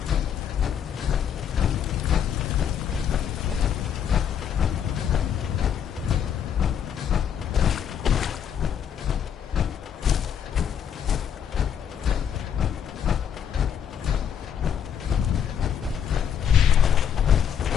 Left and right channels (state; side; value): quieter; right; 8.5 dB